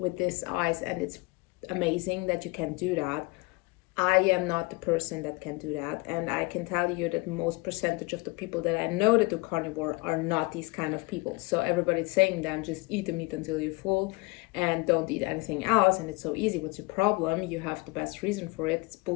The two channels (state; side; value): quieter; right; 26.1 dB